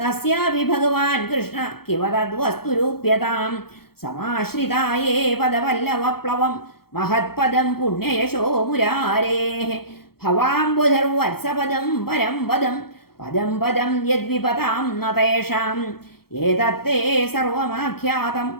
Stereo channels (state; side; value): late; right; 0.95 ms